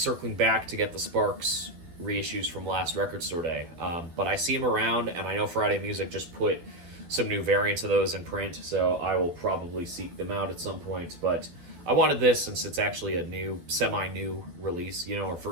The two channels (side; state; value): left; late; 12 ms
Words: back to get the Sparks reissues from last Record Store Day, but I see them around, and I know Friday Music just put some new variants of those in print, so I will probably seek them out at some point, but I wanted this since it's actually a new, semi-new release, our